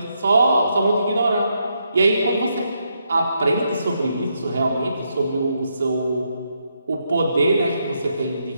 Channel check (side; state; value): both; inverted; correlation -0.79